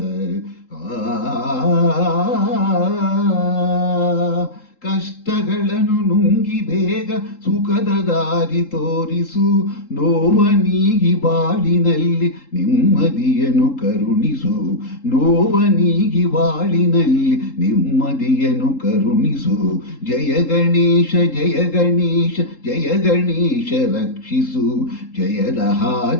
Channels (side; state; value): right; late; 3.7 ms